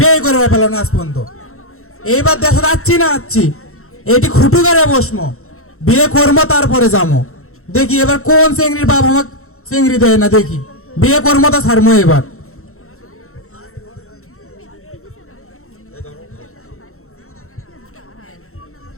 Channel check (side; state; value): right; late; 0.63 ms